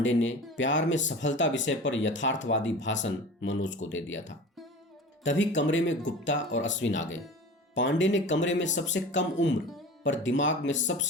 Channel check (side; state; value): both; normal; correlation 0.36